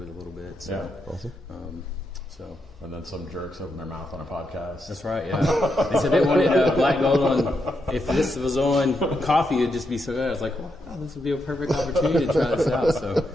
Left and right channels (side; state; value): both; normal; correlation 0.83